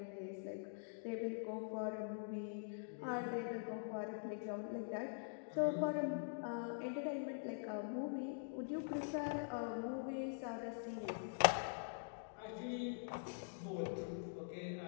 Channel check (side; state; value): right; silent; digital silence